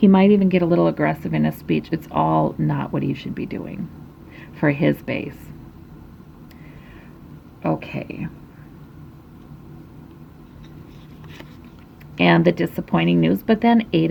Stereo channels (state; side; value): identical; both; correlation 1.00